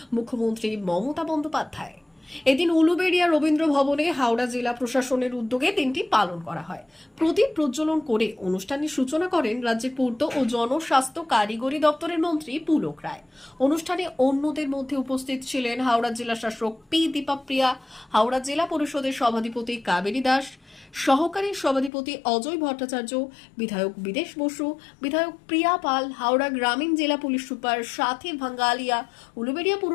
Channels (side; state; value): right; drops out; at 21.9 s